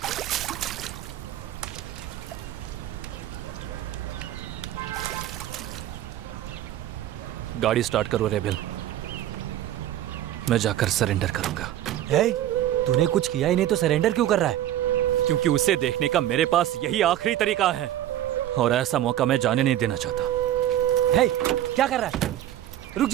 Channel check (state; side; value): quieter; left; 12.5 dB